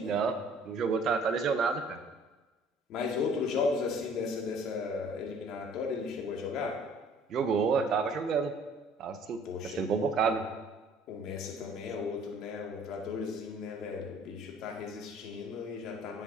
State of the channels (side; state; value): both; normal; correlation 0.54